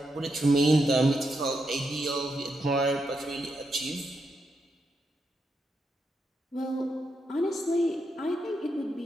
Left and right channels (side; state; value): both; normal; correlation 0.83